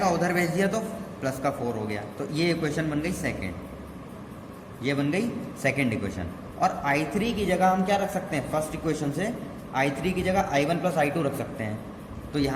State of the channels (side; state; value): both; identical; correlation 1.00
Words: उधर भेज दिया तो प्लस का 4 हो गया। तो ये इक्वेशन बन गई सेकेंड, ये बन गई सेकेंड इक्वेशन। और i3 की जगह हम क्या रख सकते हैं, फर्स्ट इक्वेशन से i3 की जगह i1 प्लस i2 रख सकते हैं। तो